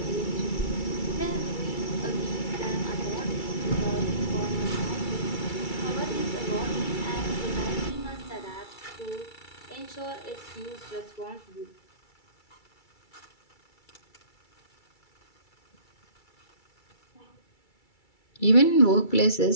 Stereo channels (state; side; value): late; right; 2.3 ms